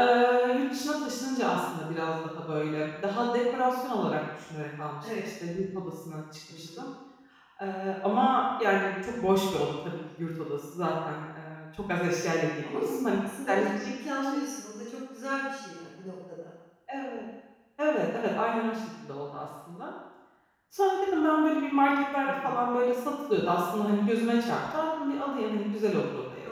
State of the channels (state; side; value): identical; both; correlation 1.00